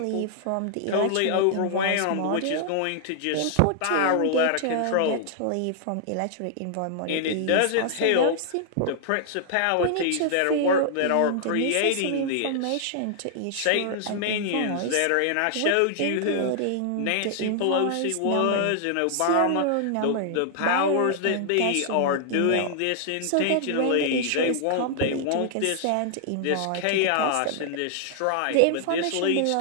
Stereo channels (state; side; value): different; both; correlation -0.01